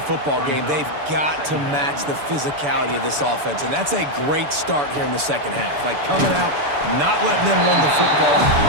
game, they've got to match the physicality of this offense. And that's a great start here in the 2nd half. Like coming out, not letting them run the football,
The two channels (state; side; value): late; left; 6.9 ms